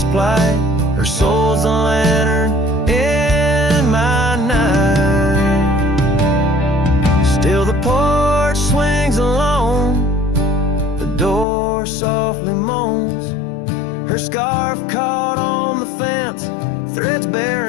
plight, her soul's a lantern in my night. Still the porch swings alone, the door softly moans, her scarf caught on the fence, threads bare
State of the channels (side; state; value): right; drops out; at 11.5 s